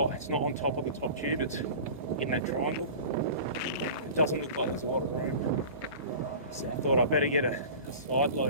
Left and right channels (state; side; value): inverted; both; correlation -0.37